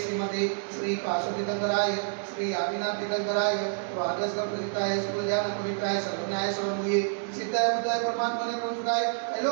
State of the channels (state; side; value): silent; left; digital silence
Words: श्रीमते श्री काशोतीर्थंकराय श्री आदिनाथ तीर्थंकराय द्वादश प्रसिद्धाय सुज्ञान पवित्राय सर्वज्ञाय सर्वमूये सिद्धाय बुद्धाय परमात्मने प्रमुखाय